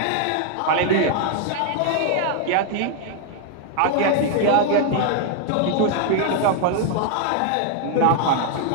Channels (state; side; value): different; both; correlation 0.00